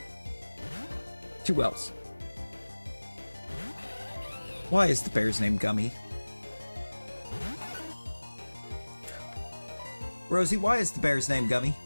2 L's. Why is the bear's name Gummy? Rosie, why is the bear's name Gummy?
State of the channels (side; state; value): both; inverted; correlation -1.00